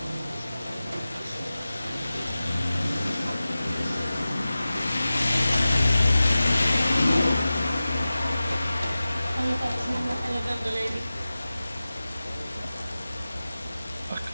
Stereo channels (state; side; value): inverted; both; correlation -0.96